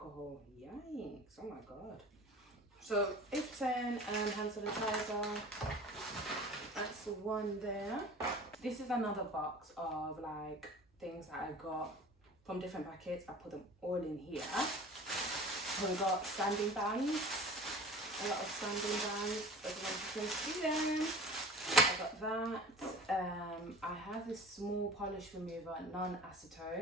Yikes, oh my god. So 80% hand sanitizer. That's the one there. This is another box of like things that I got from different packets. I put them all in here. We got sanding bands, a lot of sanding bands, as you can see them. I got that. I have this small polish remover,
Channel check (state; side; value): normal; both; correlation 0.41